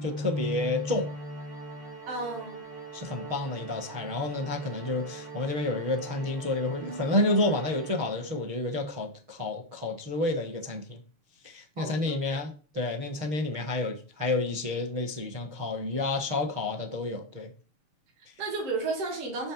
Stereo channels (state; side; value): late; left; 6.5 ms